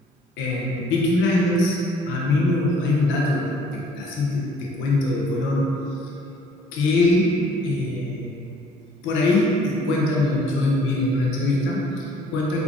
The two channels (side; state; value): both; normal; correlation 0.58